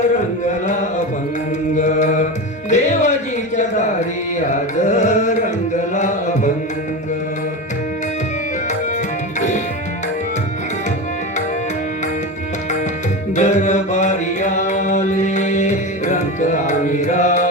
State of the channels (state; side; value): normal; both; correlation 0.22